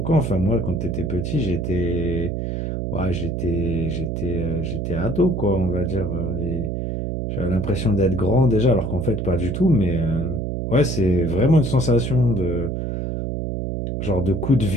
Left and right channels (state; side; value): noise; right; hum, 3 dB below the sound